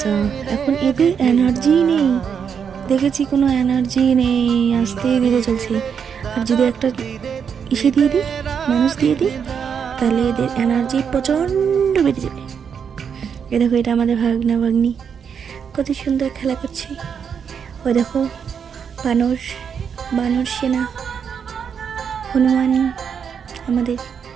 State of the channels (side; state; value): left; quieter; 7.1 dB